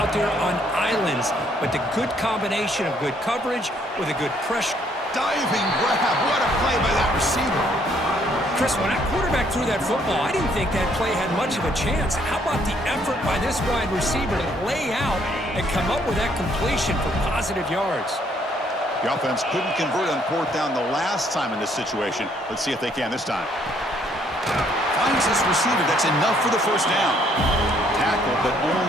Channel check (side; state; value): both; normal; correlation 0.67